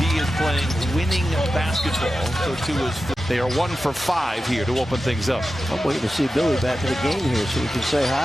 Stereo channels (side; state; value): both; normal; correlation 0.93